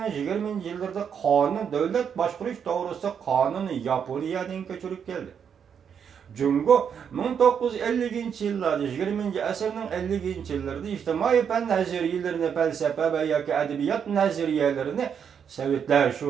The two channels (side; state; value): left; quieter; 7.5 dB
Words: 20 yıllarda kanun, devlet başkuruş doğrusu kanunu Yaponiyadan köçürüp geldi. Jungo 1950 yıllarda 20 asırның 50 yıllarda ictimai fen nazariyelerini, felsefe ve yoki edebiyat nazariyelerini Sovetler,